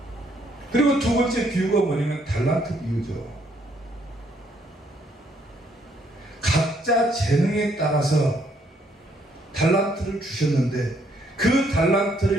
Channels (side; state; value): both; normal; correlation 0.69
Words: 그리고 두 번째 비유가 뭐냐면 달란트 비유죠. 각자 재능에 따라서 달란트를 주셨는데 그